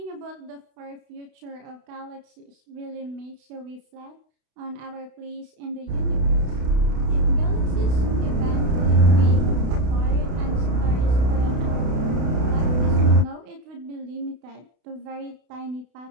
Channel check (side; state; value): left; late; 32 ms